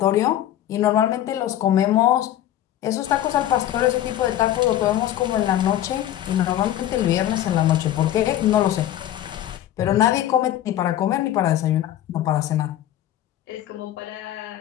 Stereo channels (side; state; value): right; quieter; 12.3 dB